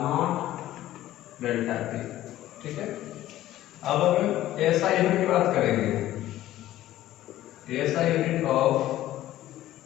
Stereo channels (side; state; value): right; quieter; 14.3 dB